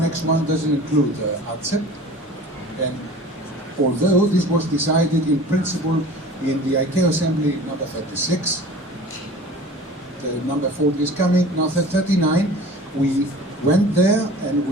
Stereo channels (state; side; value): normal; both; correlation 0.41